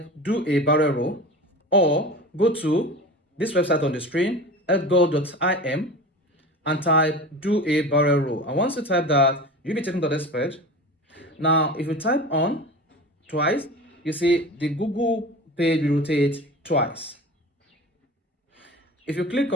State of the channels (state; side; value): normal; both; correlation 0.33